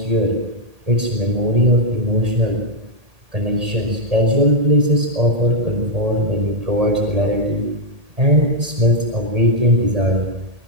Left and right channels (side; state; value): left; late; 1.8 ms